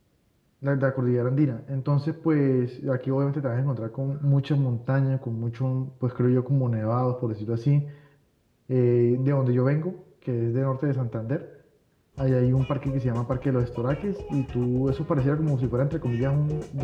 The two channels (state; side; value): identical; both; correlation 1.00